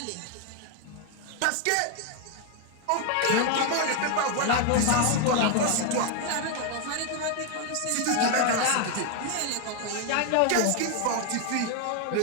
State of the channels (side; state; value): both; different; correlation 0.01